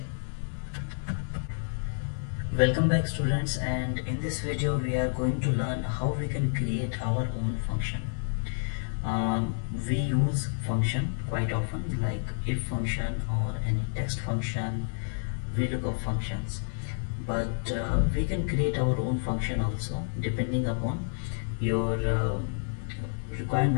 Welcome back students, and in this video we are going to learn how we can create our own function. We use function quite often, like if function or any text function, VLOOKUP functions, but we can create our own function also depending upon your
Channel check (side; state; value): right; silent; 58 dB below the other